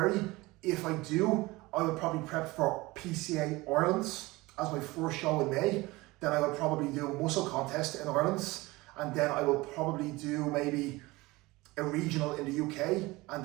If I do, I will probably prep for PCA Ireland as my first show in May. Then I will probably do a muscle contest in Ireland. And then I will probably do maybe a regional in the UK. And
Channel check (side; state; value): left; quieter; 21.4 dB